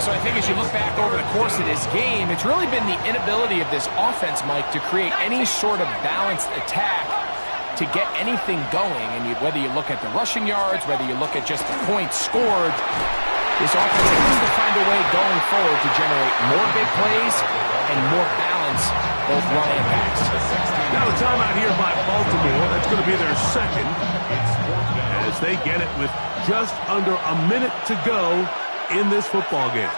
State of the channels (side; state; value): both; inverted; correlation -1.00